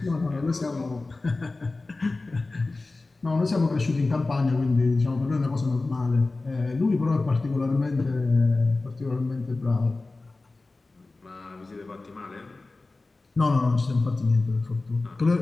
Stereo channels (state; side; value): quieter; right; 3.4 dB